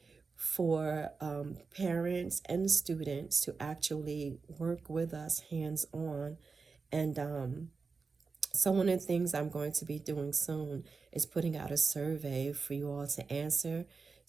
for parents and students to actually work with us hands-on and So one of the things I'm going to be doing soon is putting out a survey for you all to answer,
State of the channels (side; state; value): left; quieter; 4.6 dB